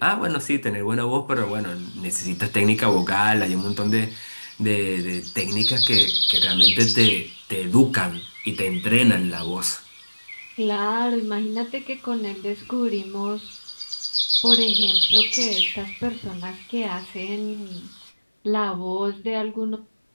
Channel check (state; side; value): inverted; both; correlation -1.00